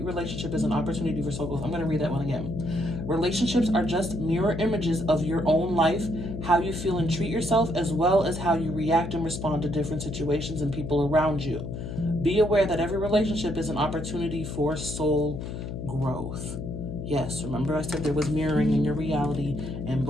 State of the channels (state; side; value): noise; left; hum, 7 dB below the sound